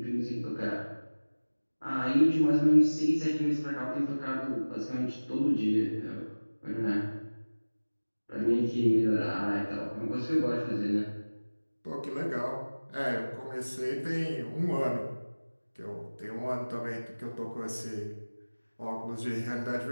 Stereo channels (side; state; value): both; inverted; correlation -1.00